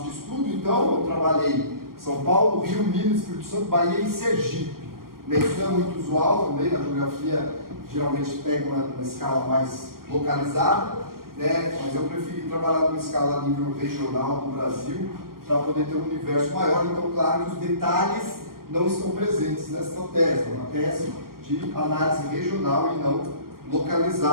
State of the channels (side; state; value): left; late; 0.92 ms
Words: de estudo, então, eu trabalhei São Paulo, Rio, Minas, Espírito Santo, Bahia e Sergipe. Né? Isso não é muito usual também, na geografia geralmente pega uma escala mais localizada, né? Mas eu preferi trabalhar numa escala a nível regional do Brasil, para poder ter um universo maior. Então, claro que os detalhes não estão presentes nesta tese, é uma tese de análise regional e não